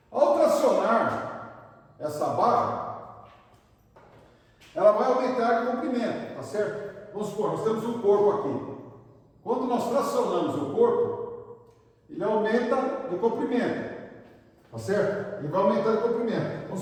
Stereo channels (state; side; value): identical; both; correlation 1.00